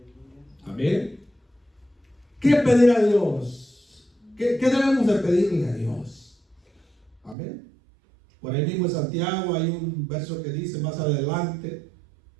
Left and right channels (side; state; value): left; drops out; at 7.4 s